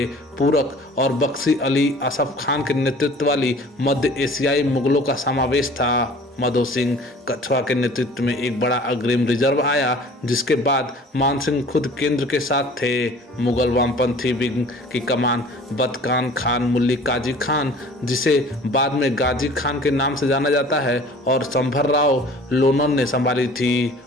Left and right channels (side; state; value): both; normal; correlation 0.47